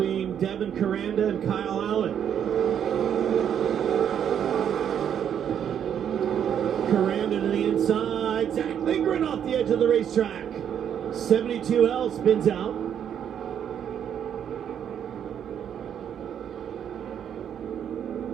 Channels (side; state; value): left; quieter; 8.9 dB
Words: Devin Koranda and Kyle Allen. Koranda to the inside. Zach Lindgren off the edge of the racetrack. 72L spins out.